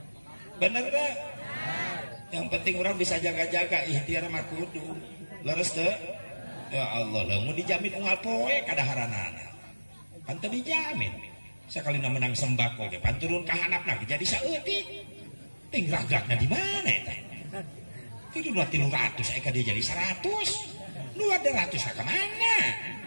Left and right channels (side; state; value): both; inverted; correlation -1.00